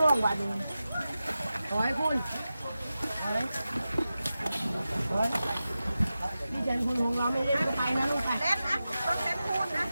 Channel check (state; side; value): inverted; both; correlation -0.93